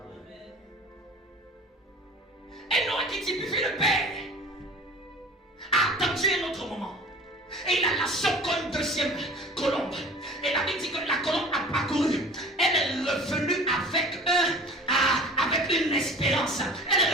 Et Noé qui typifie le Père a attendu un autre moment. Et il a lâché encore une deuxième colombe. Et la Bible dit que la colombe a parcouru. Elle est revenue avec une espérance. Elle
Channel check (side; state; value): both; normal; correlation 0.42